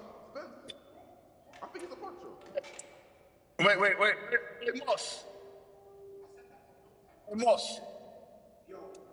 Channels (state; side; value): identical; both; correlation 1.00